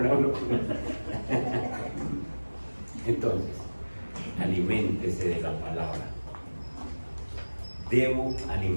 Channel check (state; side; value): inverted; both; correlation -1.00